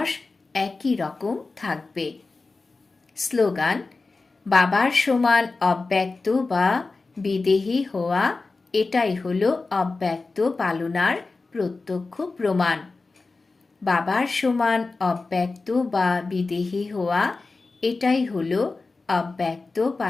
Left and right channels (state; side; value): quieter; right; 3.8 dB